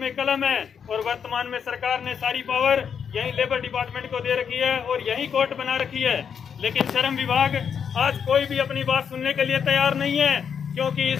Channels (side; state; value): right; quieter; 7.3 dB